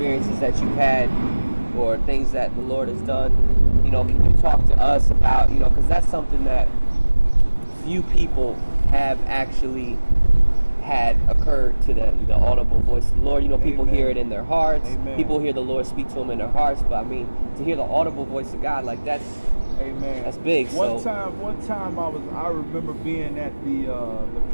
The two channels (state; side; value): inverted; both; correlation -1.00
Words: that you've had or things that the Lord has done. Can you talk to us about because that's something that few people have actually had occurred to them, the audible voice of the Lord. People Amen. Hear it in their hearts. Amen. People hear the Lord speak to them in their hearts, but to hear the audible voice of God, like that's Amen. That's big. One time I remember being at the